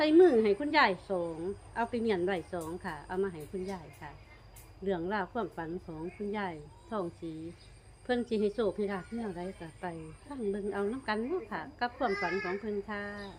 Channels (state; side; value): identical; both; correlation 1.00